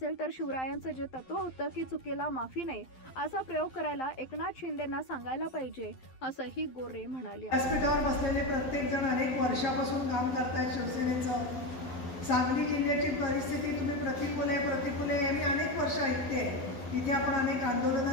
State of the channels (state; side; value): late; right; 11 ms